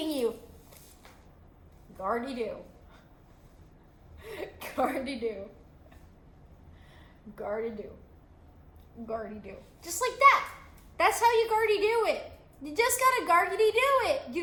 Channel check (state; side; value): identical; both; correlation 1.00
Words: you. Gardy-do. Gardy-do. Gardy-do. Gardy-do. Just like that. That's how you Gardy-do it. You just gotta Gardy-do it.